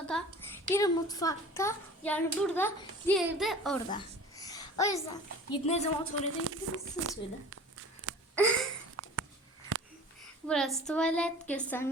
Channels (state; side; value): normal; both; correlation 0.42